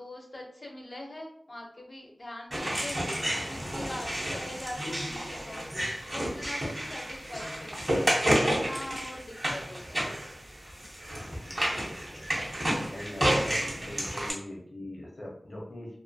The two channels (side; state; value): both; normal; correlation 0.97